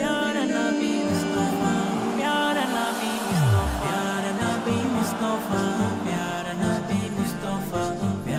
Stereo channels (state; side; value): identical; both; correlation 1.00